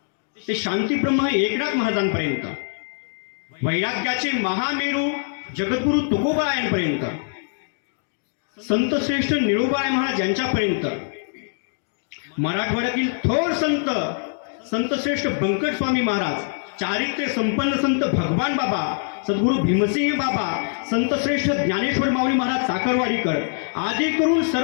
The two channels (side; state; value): right; silent; digital silence